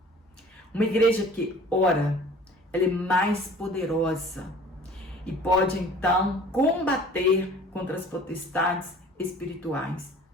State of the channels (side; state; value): both; normal; correlation 0.48